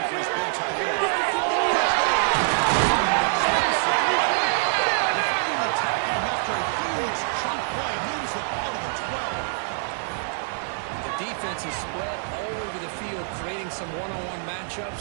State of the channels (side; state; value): left; silent; 60 dB below the other